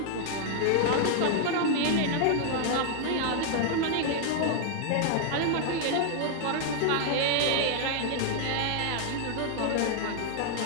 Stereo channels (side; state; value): both; different; correlation 0.00